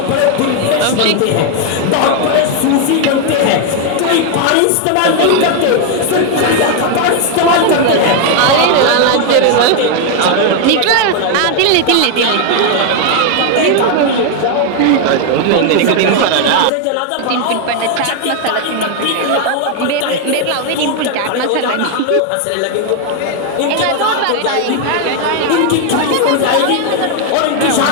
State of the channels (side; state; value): both; different; correlation 0.01